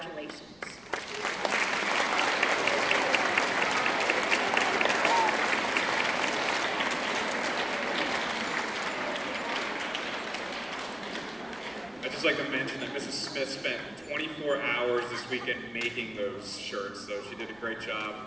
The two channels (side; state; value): right; noise; rumble, 29 dB below the sound